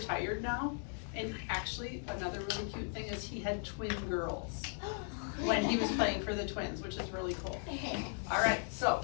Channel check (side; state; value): right; silent; 53 dB below the other